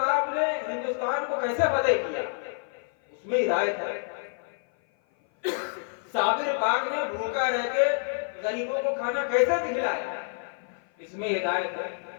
نے ہندوستان کو کیسے فتح کیا، اس میں ہدایت ہے۔ صابر پاک نے بھوکا رہ کے غریبوں کو کھانا کیسے کھلایا، اس میں ہدایت ہے۔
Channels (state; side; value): silent; right; 56 dB below the other